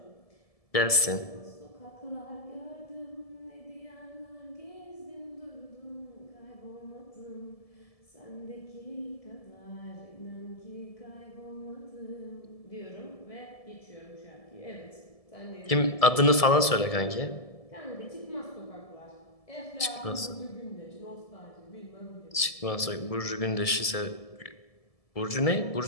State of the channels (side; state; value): right; late; 1.7 ms